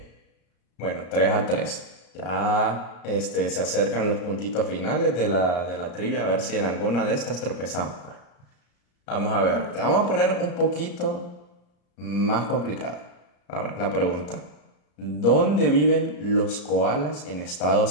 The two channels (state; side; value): late; right; 34 ms